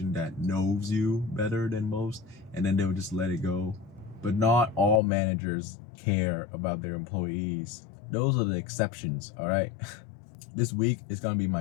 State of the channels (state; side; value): drops out; right; at 5.0 s